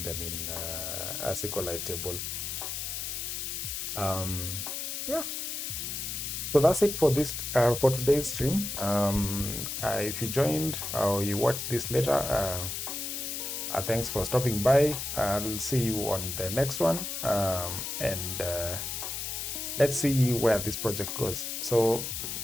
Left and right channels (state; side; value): noise; left; hiss, 4 dB below the sound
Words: them in a SQLite table. Yeah. So that's it for this for today's stream. If you joined or you watched this later, thanks for stopping by. I'll see you on the next one, and let's see where this project goes. So